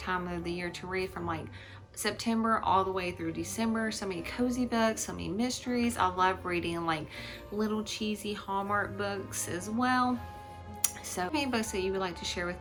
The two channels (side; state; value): both; identical; correlation 1.00